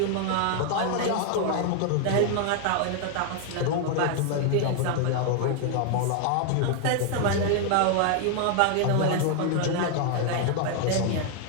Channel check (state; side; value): different; both; correlation 0.00